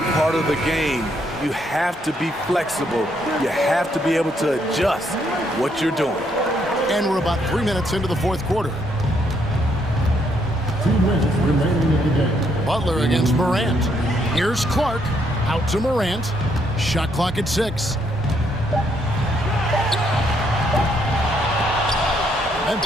part of the game. You have to be flexible. You have to be able to adjust what you're doing. And we're about 3 minutes into the fourth quarter. 2 minutes remaining in the game. Butler against Morant. Here's Clark. Out to Morant. Shot clock at 6.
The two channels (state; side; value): normal; both; correlation 0.72